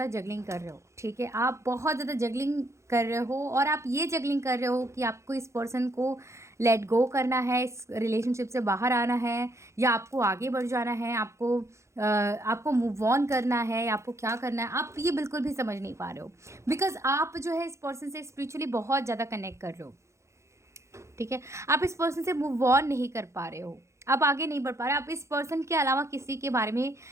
जगलिंग कर रहे हो। ठीक है, आप बहुत ज़्यादा जगलिंग कर रहे हो, और आप ये जगलिंग कर रहे हो कि आपको इस पर्सन को लेट गो करना है, इस रिलेशनशिप से बाहर आना है, या आपको आगे बढ़ जाना है, आपको मूव ऑन करना है, या आपको क्या करना है, आप ये बिल्कुल भी समझ नहीं पा रहे हो। बिकॉज आप जो है इस पर्सन से स्पिरिचुअली बहुत ज़्यादा कनेक्ट कर रहे हो। ठीक है, आप इस पर्सन से मूव ऑन नहीं कर पा रहे हो, आप आगे नहीं बढ़ पा रहे, आप इस पर्सन के अलावा किसी के बारे में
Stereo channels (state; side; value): late; left; 0.14 ms